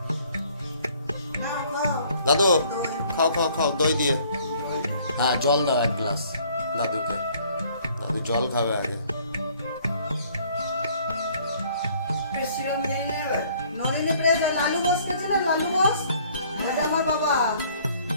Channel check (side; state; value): both; inverted; correlation -0.59